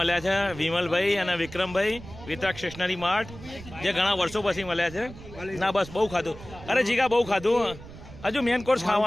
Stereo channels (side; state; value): right; noise; rumble, 16 dB below the sound